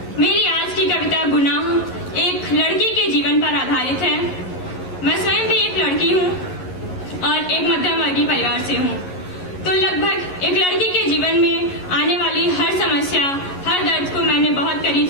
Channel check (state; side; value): late; right; 11 ms